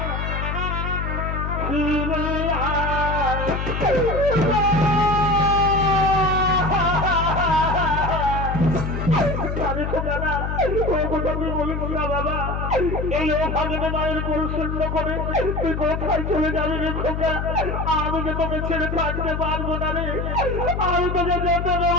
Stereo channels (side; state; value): left; noise; hum, 3 dB below the sound